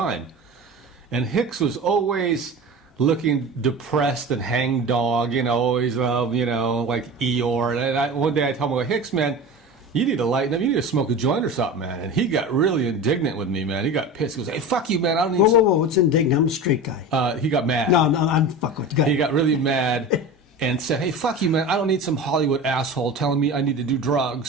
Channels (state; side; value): normal; both; correlation 0.31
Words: And Hicks was always looking depressed and hangdog, always, like Eeyore. And one day I told him, Hicks, man, you need to lighten up. You need to smoke a joint or something, man. And he got really indignant with me, man. He got pissed. He goes, hey, fuck you, man. I don't need Whoa. What's indignant? I'm a straight guy. He got mad. No, I'm fuck with you. He got really mad. And said, hey, fuck you, man. I don't need some Hollywood asshole telling me I need to do